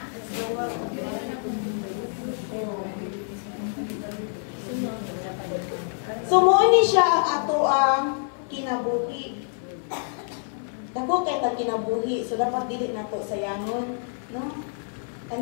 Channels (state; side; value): silent; right; 61 dB below the other